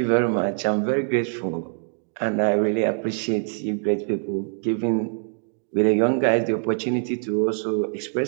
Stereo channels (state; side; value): silent; left; 56 dB below the other